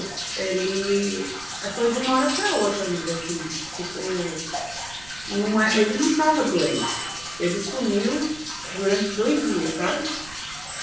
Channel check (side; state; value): right; noise; rumble, 20 dB below the sound